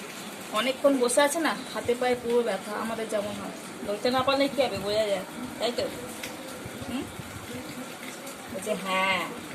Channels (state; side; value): identical; both; correlation 1.00